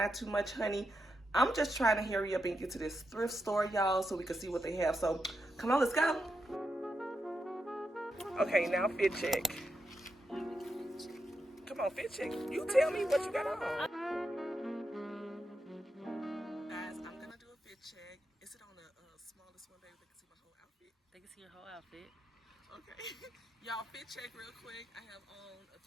too much, honey. I'm just trying to hurry up and get to this thrift store, y'all, so we can see what they have. So come on, let's go. Okay, now fit check. Come on, fit check. You tell me what you got on. Guys, I'm gonna do a fit check. Is it on the smallest one, baby? They can see my whole outfit. They can see your whole outfit. Okay. Y'all, fit check real quick. I have on a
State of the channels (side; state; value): both; normal; correlation 0.86